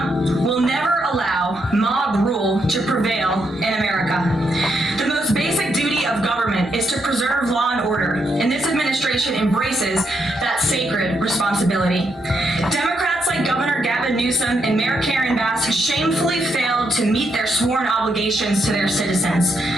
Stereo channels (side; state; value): both; normal; correlation 0.79